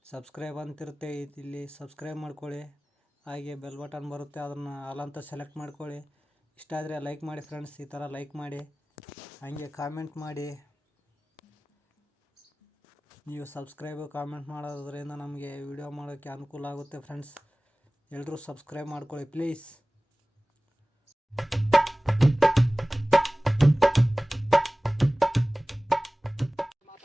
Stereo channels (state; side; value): normal; both; correlation 0.98